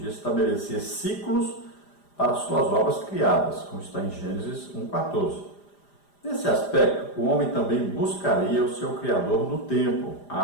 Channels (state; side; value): late; right; 5.0 ms